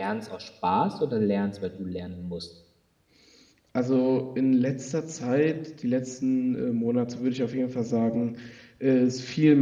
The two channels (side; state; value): both; identical; correlation 1.00